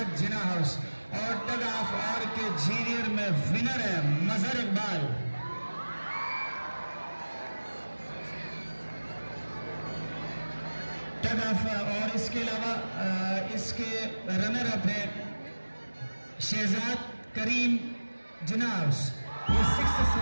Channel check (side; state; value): both; inverted; correlation -1.00